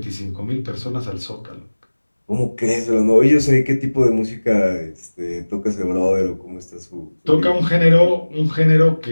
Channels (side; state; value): both; inverted; correlation -1.00